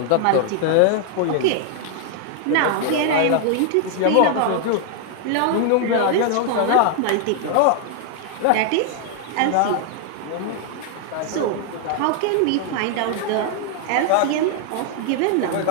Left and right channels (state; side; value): different; both; correlation 0.00